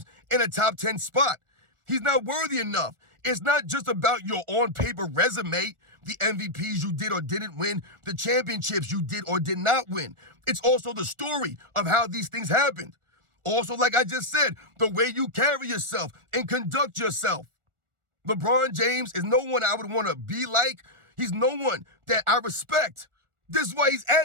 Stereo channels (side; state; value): left; late; 1.4 ms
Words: in a top 10 spot. He's not worthy enough. It's not just about your on-paper resume, the MVPs you did or didn't win, the championships you did or did not win. It's also the story of how these things happened. Also, like I just said, the way you carry yourself and conduct yourself. LeBron James is no one I would want to be like. He's no one that I respect. This is why he's